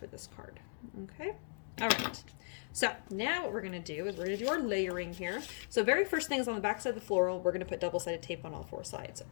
this card. Okay? All right. So now what we're going to do is we're going to do our layering here. So very first thing is on the back side of the floral, we're going to put double-sided tape on all 4 sides.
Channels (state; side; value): silent; right; digital silence